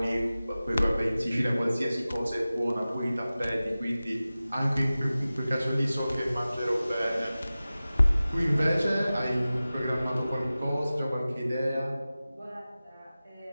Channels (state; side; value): inverted; both; correlation -0.96